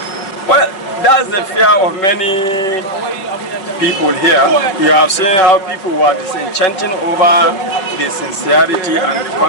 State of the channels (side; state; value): right; late; 5.3 ms